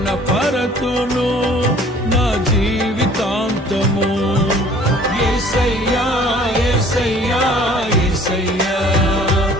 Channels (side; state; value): both; normal; correlation 0.52